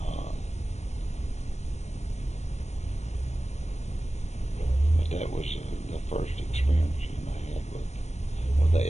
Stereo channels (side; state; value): right; late; 0.32 ms